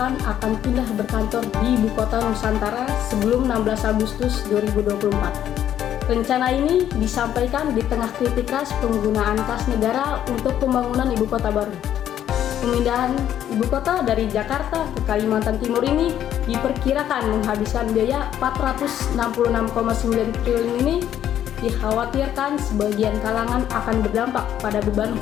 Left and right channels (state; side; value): quieter; right; 10.7 dB